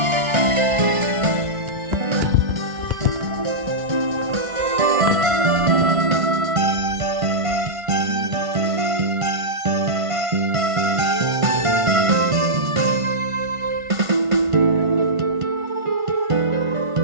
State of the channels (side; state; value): left; late; 1.5 ms